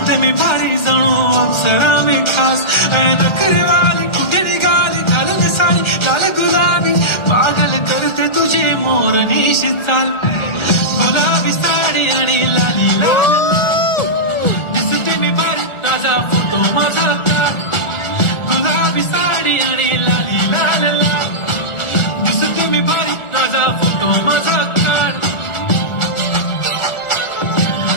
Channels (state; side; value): late; right; 1.4 ms